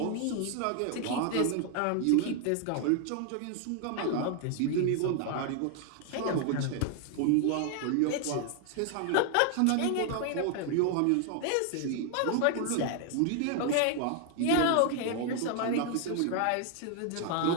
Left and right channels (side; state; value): both; different; correlation 0.00